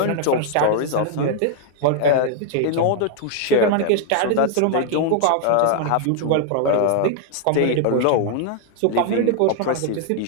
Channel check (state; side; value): different; both; correlation 0.00